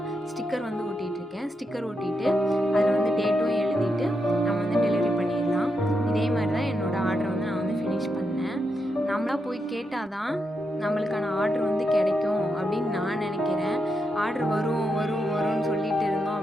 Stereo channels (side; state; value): both; normal; correlation 0.83